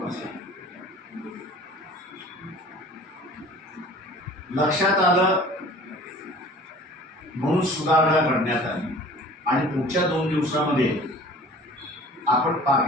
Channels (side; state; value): both; normal; correlation 0.46